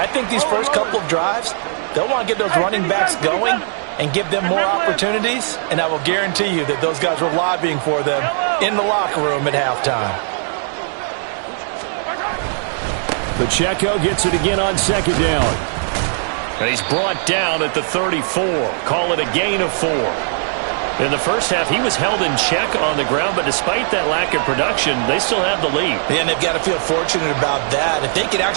think these first couple of drives, they'll want to get those running backs going and give them more opportunities, and I will guarantee you that those guys were lobbying for them in the locker room at halftime. Pacheco gets it again on second down. And he's brought down at the 34. Call it a gain of 4. In the first half, he was held in check on the ground, but despite that lack of production, they still have the lead. And they've got to feel fortunate about that. If they could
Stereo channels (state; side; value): silent; left; digital silence